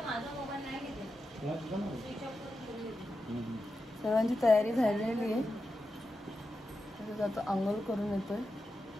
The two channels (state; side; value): normal; both; correlation 0.89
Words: सर्वांची तयारी झालेली आहे. तसंच आता अंघोळ करून येतोय